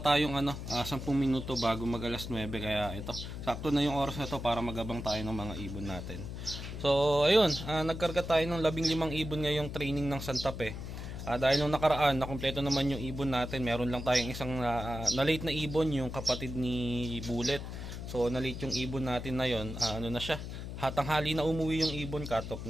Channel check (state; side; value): noise; left; hum, 8 dB below the sound